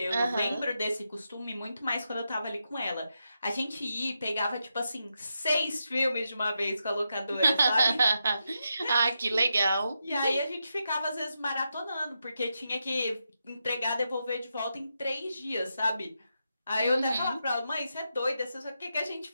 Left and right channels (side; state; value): both; inverted; correlation -0.86